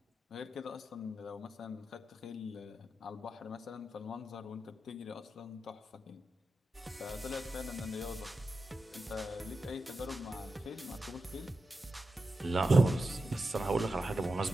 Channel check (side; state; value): both; normal; correlation 0.90